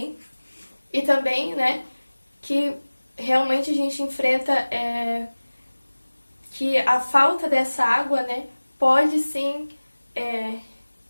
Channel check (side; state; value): both; inverted; correlation -1.00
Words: E também, né, que realmente a gente enfrenta que a falta dessa água, né, pode sim